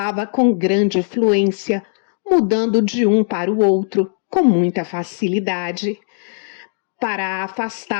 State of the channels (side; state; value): right; silent; 67 dB below the other